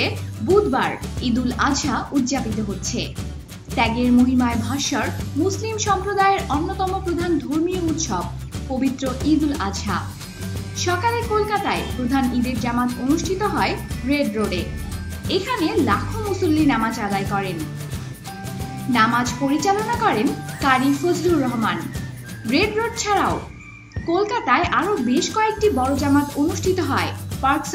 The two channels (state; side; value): identical; both; correlation 1.00